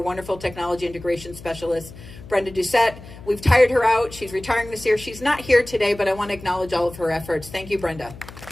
technology integration specialist, Brenda Doucette. We've tired her out. She's retiring this year. She's not here today, but I want to acknowledge all of her efforts. Thank you, Brenda.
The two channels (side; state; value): left; noise; hum, 16 dB below the sound